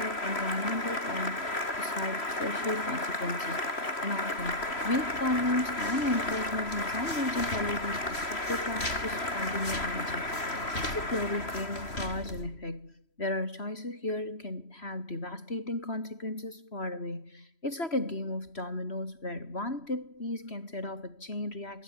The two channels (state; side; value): late; right; 3.0 ms